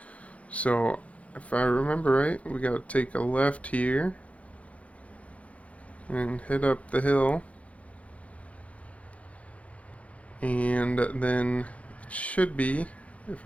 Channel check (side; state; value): right; late; 0.065 ms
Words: So if I remember right, we gotta take a left here and head up the hill. And then it should be, if